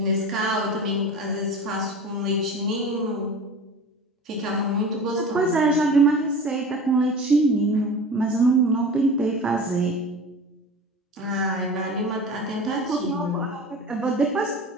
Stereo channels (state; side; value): normal; both; correlation 0.36